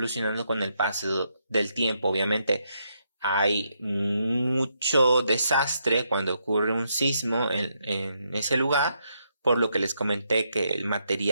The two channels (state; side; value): inverted; both; correlation -0.78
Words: con el paso del tiempo. Obviamente hay mucho desastre cuando ocurre un sismo en ese lugar, por lo que les comenté que el